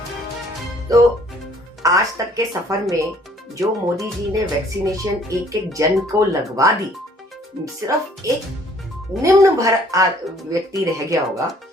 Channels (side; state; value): both; normal; correlation 0.59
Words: तो आज तक के सफर में जो मोदी जी ने वैक्सीनेशन एक एक जन को लगवा दी, सिर्फ एक निम्न भर व्यक्ति रह गया होगा,